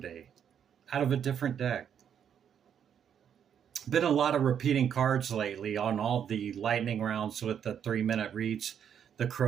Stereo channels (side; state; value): left; quieter; 8.5 dB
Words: out of a different deck. Been a lot of repeating cards lately on all the lightning rounds with the 3-minute reads. The